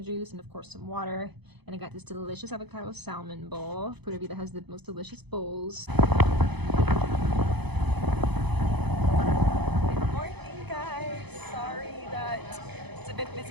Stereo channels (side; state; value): left; late; 0.99 ms